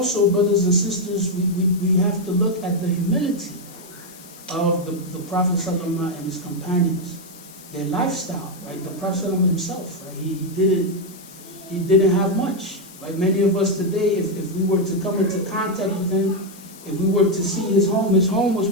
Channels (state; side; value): noise; left; hiss, 20 dB below the sound